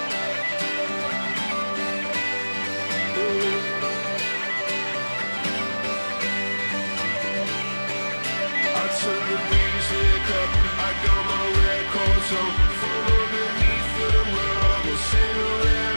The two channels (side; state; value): both; inverted; correlation -1.00